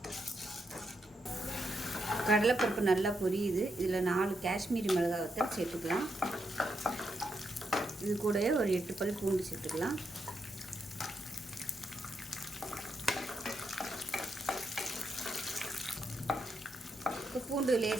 கடலைப்பருப்பு நல்லா பொரியுது. இதில் 4 காஷ்மீரி மிளகாய் வத்தல் சேர்த்துக்கலாம். இது கூடவே ஒரு 8 பல் பூண்டு சேர்த்துக்கலாம். இப்போ பூண்டு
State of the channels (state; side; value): normal; both; correlation 0.82